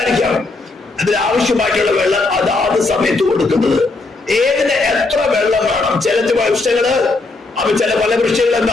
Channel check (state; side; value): quieter; right; 3.4 dB